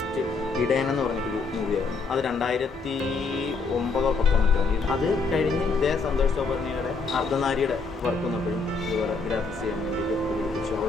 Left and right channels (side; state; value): right; quieter; 4.2 dB